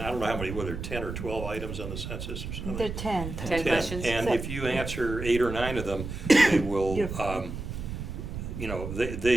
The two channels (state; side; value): noise; right; rumble, 7 dB below the sound